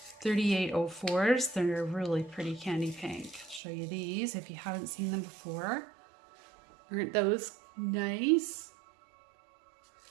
3804s. They're really pretty candy pink. I'll show you these if you haven't seen them before. Aren't those nice?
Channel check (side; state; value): left; drops out; at 3.6 s